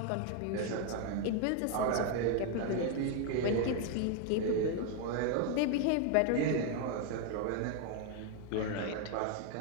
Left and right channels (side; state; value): both; different; correlation 0.00